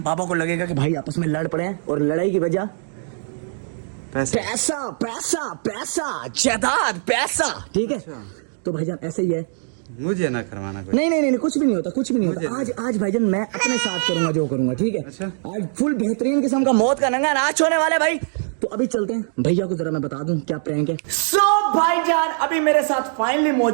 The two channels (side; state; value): left; silent; digital silence